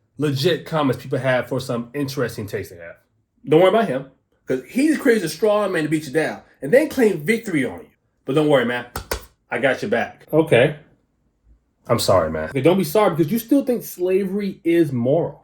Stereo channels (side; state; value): both; identical; correlation 1.00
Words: legit comments people have for some interesting taste they have. Don't worry about him, because he just creates a straw man to beat you down and then claim victory on you. But don't worry, man. I got your back. Okay. I'm sorry, man. Okay, don't be sorry, because you still think slavery is